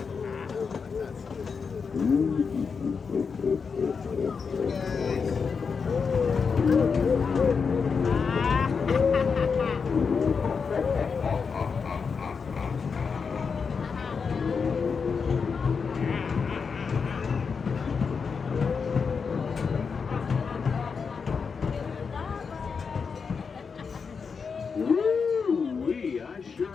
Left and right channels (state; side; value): quieter; right; 5.6 dB